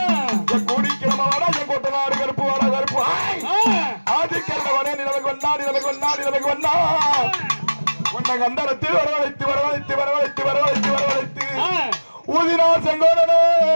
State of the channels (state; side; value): inverted; both; correlation -1.00